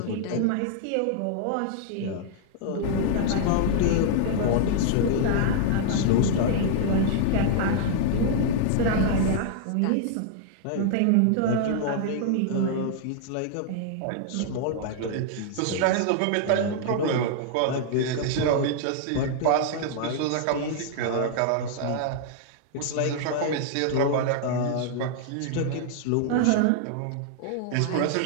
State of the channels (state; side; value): different; both; correlation -0.01